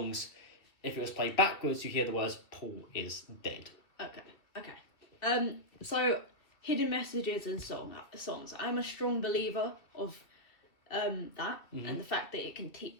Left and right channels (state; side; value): late; right; 2.7 ms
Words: if it was played backwards, you hear the words, Paul is dead. Okay. So, hidden messages and songs. I'm a strong believer of that, and the fact that it can